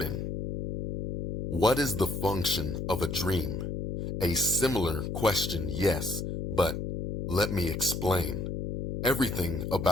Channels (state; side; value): noise; left; hum, 4 dB below the sound